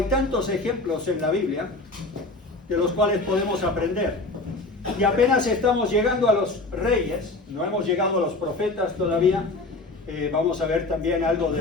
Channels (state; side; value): quieter; right; 3.1 dB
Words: tantos ejemplos en la Biblia de los cuales podemos aprender. Y apenas estamos llegando a los reyes, no hemos llegado a los profetas todavía. Vamos a ver también algo